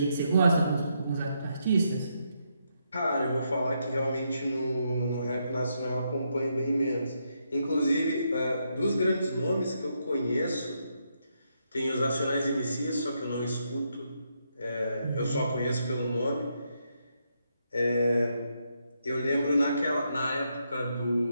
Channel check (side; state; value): both; inverted; correlation -0.79